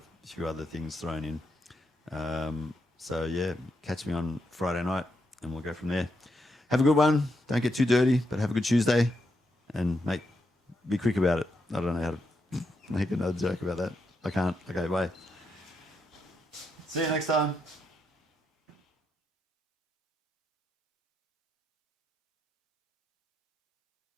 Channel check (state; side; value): normal; both; correlation 0.82